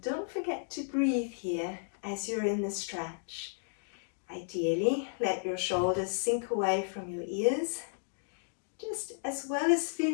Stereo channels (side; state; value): right; silent; digital silence